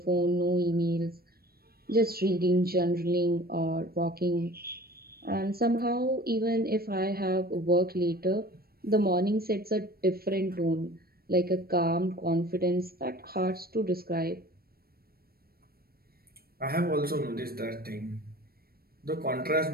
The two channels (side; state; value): left; late; 0.44 ms